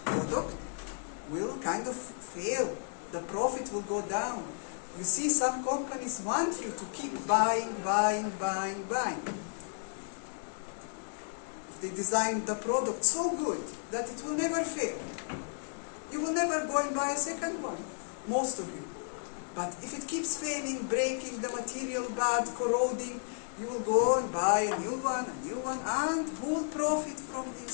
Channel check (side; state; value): right; silent; digital silence